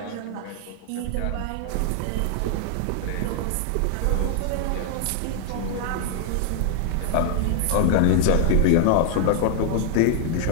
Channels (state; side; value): different; both; correlation 0.00